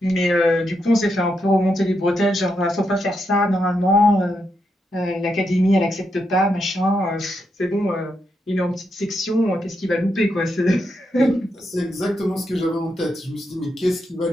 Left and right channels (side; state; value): both; normal; correlation 0.82